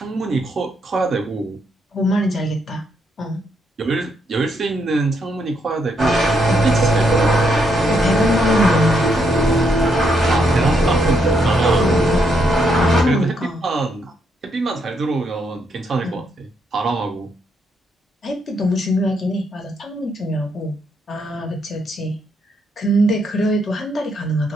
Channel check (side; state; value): both; normal; correlation 0.76